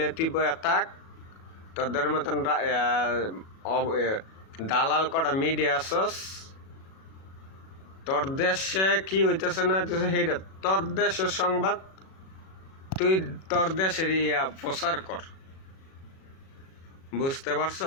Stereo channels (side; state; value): right; late; 37 ms